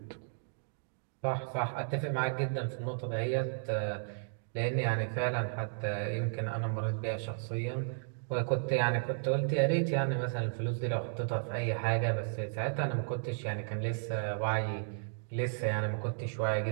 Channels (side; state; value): left; silent; digital silence